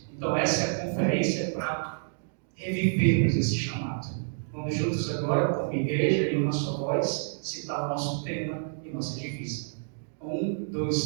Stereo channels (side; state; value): left; silent; digital silence